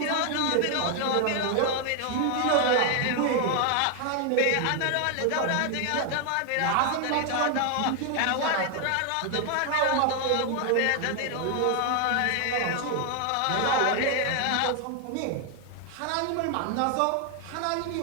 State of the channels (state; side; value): different; both; correlation 0.00